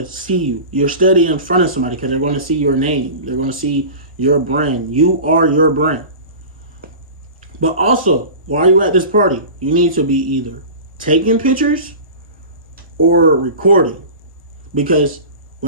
see you. You're steady in front of somebody because they're going to see your name. They're going to see your brand. You are your brand. But also, while you're at this party, you need to be either taking pictures or recording. Because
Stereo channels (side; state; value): both; inverted; correlation -0.34